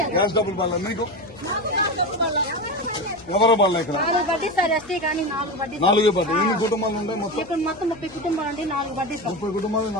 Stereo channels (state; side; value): noise; left; hum, 22 dB below the sound